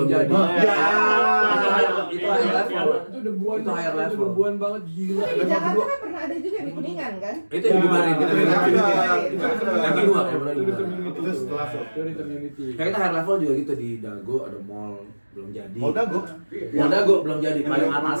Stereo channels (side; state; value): both; inverted; correlation -1.00